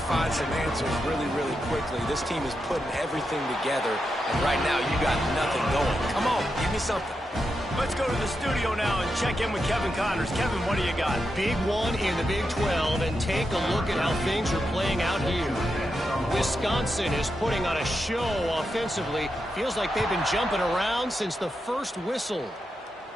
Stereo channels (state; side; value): normal; both; correlation 0.86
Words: some answers really, really quickly. This team is putting everything together, and right now you got nothing going. Come on, give me something. Let's go to the studio now and check in with Kevin Connors. Kevin, what do you got? Big one in the Big 12, and take a look at how things are playing out here. Wisconsin is putting on a show offensively. Feels like they've been jumping around since the first whistle.